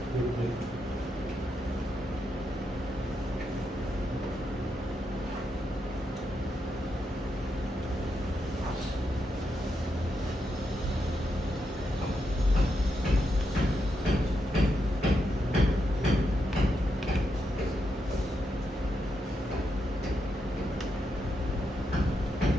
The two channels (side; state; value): both; normal; correlation 0.83